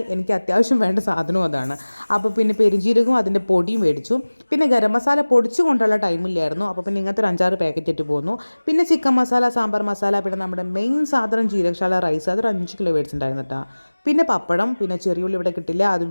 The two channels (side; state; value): both; inverted; correlation -1.00